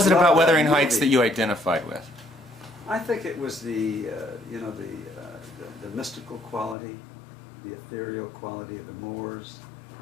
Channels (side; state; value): right; drops out; at 6.8 s